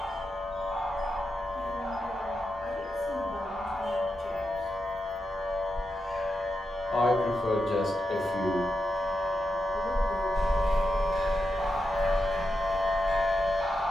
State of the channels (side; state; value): both; normal; correlation 0.87